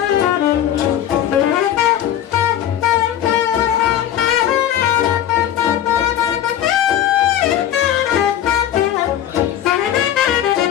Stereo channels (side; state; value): right; quieter; 10.9 dB